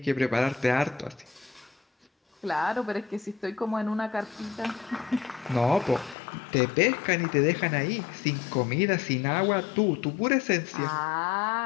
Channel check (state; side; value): drops out; right; at 6.2 s